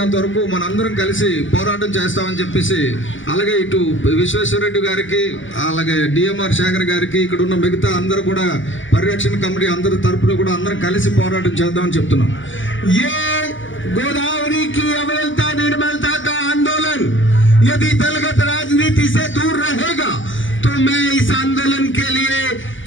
వరకు మనందరం కలిసి పోరాటం చేస్తామని చెప్పేసి, అలాగే ఇటు విశ్వేశ్వరరెడ్డి గారికి, అలాగే డిఎంఆర్ శేఖర్ గారికి, ఇక్కడ ఉన్న మిగతా అందరూ కూడా పరిరక్షణ కమిటీ అందరి తరపున కూడా అందరం కలిసి పోరాటం చేద్దామని చెప్తున్నాం. ये गोदावरी की अविरलता निर्मलता का आंदोलन यदि दलगत राजनीति से दूर रहेगा तो मैं इस आंदोलन के लिए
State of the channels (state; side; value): late; right; 0.56 ms